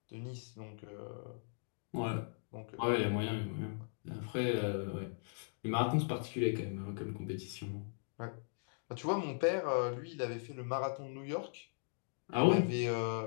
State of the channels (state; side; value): silent; right; digital silence